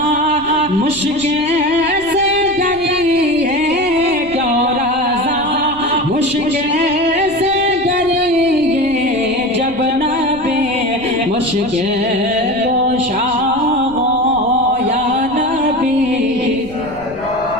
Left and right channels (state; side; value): noise; left; rumble, 20 dB below the sound